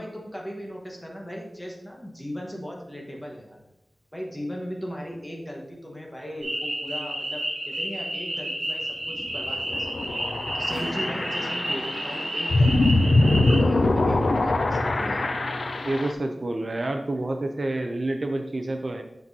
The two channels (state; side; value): normal; both; correlation 0.95